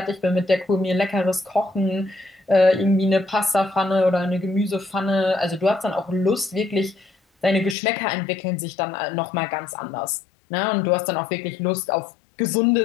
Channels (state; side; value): drops out; right; at 7.8 s